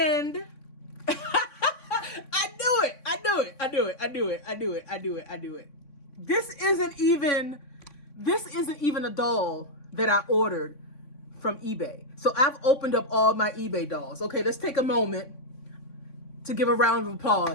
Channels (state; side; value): late; right; 3.5 ms